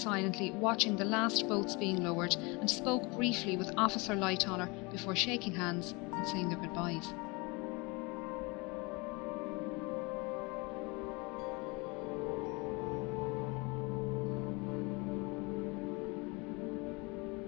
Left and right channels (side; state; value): right; quieter; 27.4 dB